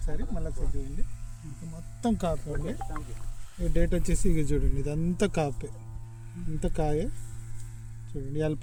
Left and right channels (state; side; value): identical; both; correlation 1.00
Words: మళ్ళీ చూడండి, మొత్తం కాపే అండి. ఈ డేట్ వచ్చేసి ఇక చూడండి, ఇదంతా కాపే, ఇంత కాయే చూడండి. ఇవాళ